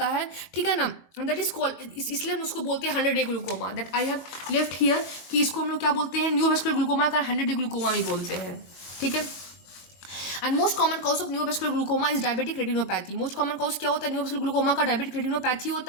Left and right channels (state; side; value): late; right; 23 ms